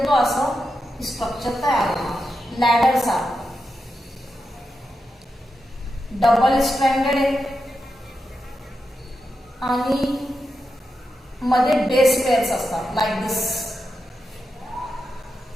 तो असं स्ट्रक्चर तयार होणार, लॅडर सारखं. डबल स्ट्रँडेड आहे आणि मध्ये बेस पेअर्स असतात, लाईक दिस.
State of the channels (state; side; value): normal; both; correlation 0.88